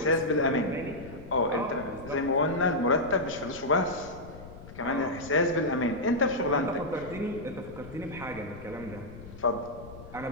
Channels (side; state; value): left; noise; rumble, 15 dB below the sound